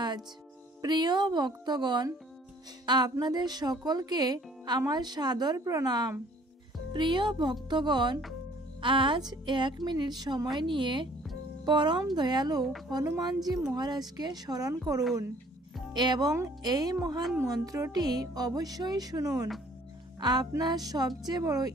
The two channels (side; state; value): both; normal; correlation 0.57